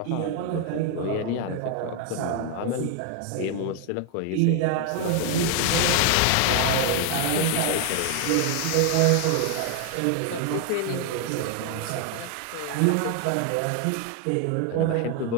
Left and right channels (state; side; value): different; both; correlation 0.00